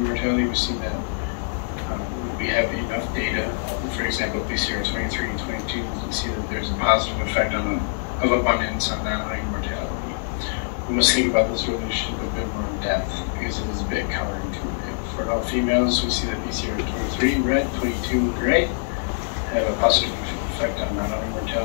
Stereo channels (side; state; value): right; silent; digital silence